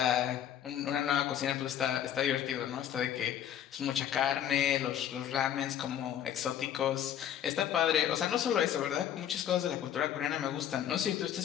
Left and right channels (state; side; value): quieter; right; 10.2 dB